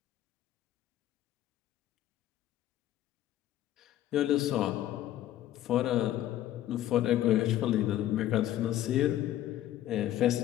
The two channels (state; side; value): quieter; right; 13.0 dB